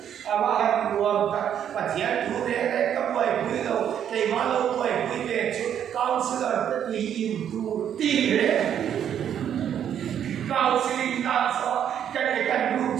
mà hàng nguồn và thiệt chủ đề đấy các buổi quý đầu cái mà lâu buổi quý về chút cao sư là tất nhiên im tu tin đấy cao sư linh ta so cái lúc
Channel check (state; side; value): quieter; left; 9.4 dB